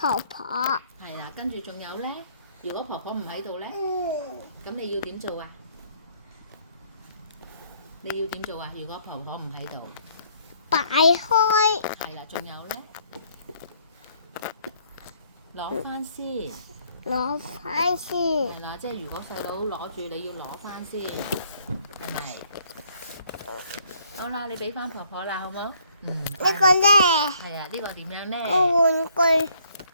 婆。係啦，跟住仲有咧，如果婆婆唔喺度咧，咁你要點做啊？你要點做啊？如果婆婆唔喺度，擺開。係啦，仲有咧，攞翻先。攞翻先。係啦，即係如果細佬攞住，你要攞翻先，係咪？好啦，你俾翻婆婆啦，好冇？呢個咧，係啊，呢個點樣咧？個玩具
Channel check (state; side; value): inverted; both; correlation -0.65